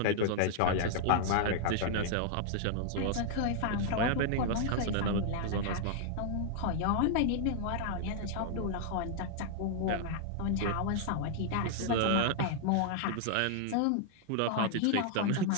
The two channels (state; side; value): different; both; correlation -0.01